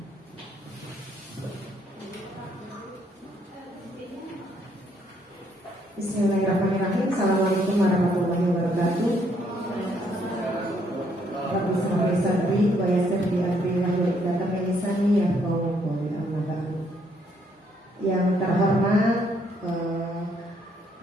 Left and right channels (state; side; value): normal; both; correlation 0.70